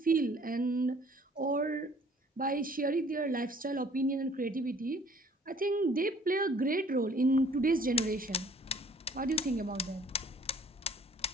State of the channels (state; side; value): normal; both; correlation 0.56